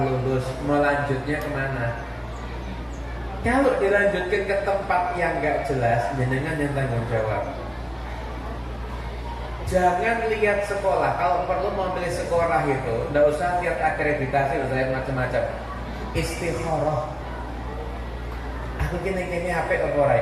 melanjutnya kemana? Kalau dilanjutkan ke tempat yang gak jelas, jenengan yang tanggung jawab. Jangan lihat sekolah. Kalau perlu mau pilih sekolah itu, nggak usah lihat akreditasi, nggak usah lihat macam-macam. Istikharah. Aku gini HP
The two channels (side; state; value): both; identical; correlation 1.00